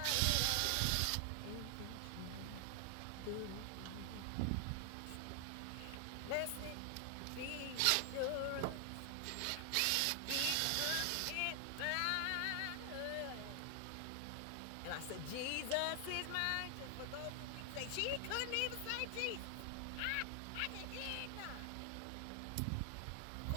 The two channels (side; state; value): both; different; correlation 0.00